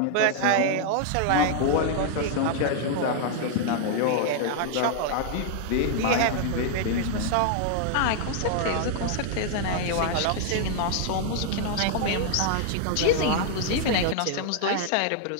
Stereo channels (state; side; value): different; both; correlation 0.00